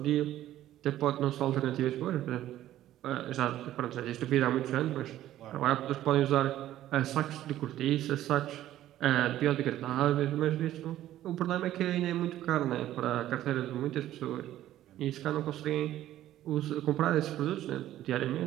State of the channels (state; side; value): quieter; left; 13.2 dB